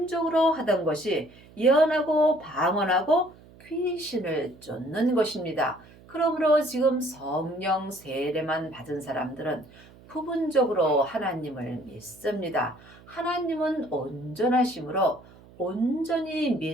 하던 것이 예언하고 방언하고 귀신을 쫓는 것입니다. 그러므로 지금 성령 세례만 받은 사람들은 부분적으로 하나님을 믿습니다. 하나님은 온전하심으로 온전히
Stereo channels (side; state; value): right; noise; hum, 23 dB below the sound